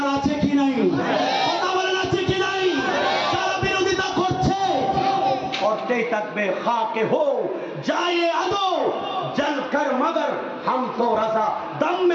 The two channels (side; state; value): both; identical; correlation 1.00